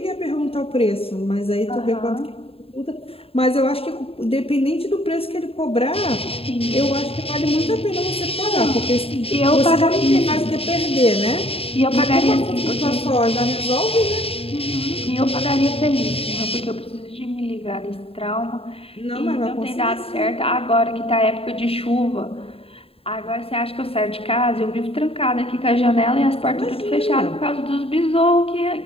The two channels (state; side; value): late; right; 0.27 ms